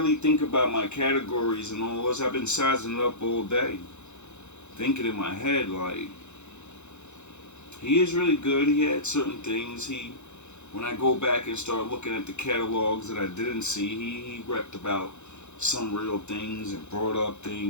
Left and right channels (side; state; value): right; late; 0.83 ms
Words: think about my categories and all this, I've been sizing it up all day. Thinking in my head, like, he is really good. He had certain things. When I go back and start looking at the catalogs that I didn't see, he repped about some real things and brought up